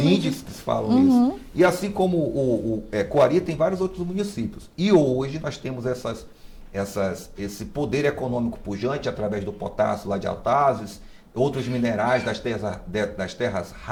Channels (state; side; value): identical; both; correlation 1.00